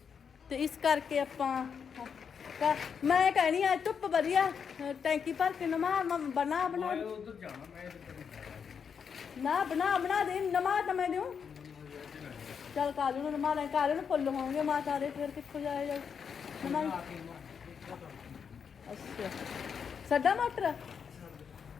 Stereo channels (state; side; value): quieter; right; 6.8 dB